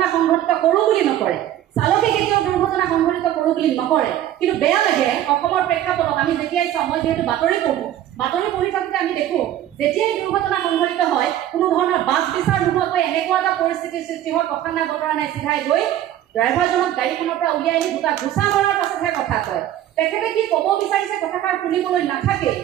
সংঘটিত কৰোঁ বুলি নকৰে, চালকে কেতিয়াও দুৰ্ঘটনা সংঘটিত কৰোঁ বুলি নকৰে, কিন্তু বেয়া লাগে অসমৰ প্ৰেক্ষাপটত আমি যেতিয়াই চাওঁ, মই যিহেতু বাতৰি পঢ়ি থাকোঁতে আমি দেখোঁ যেতিয়াই দুৰ্ঘটনা সংঘটিত হয় কোনো ধৰণৰ বাছ বিচাৰ নোহোৱাকৈ এনেকুৱা এটা পৰিস্থিতিৰ সৃষ্টি হয়, কথা নাই বতৰা নাই, চিধাই গৈ ড্ৰাইভাৰজনক গাড়ীখনৰ পৰা উলিয়াই আনি দুটা ঘোচা মৰাৰ পাছতহে কথা কয়। তেখেতে কি ক'ব বিচাৰিছে কথাষাৰ শুনিবলৈ নাথাকে,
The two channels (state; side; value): quieter; left; 12.2 dB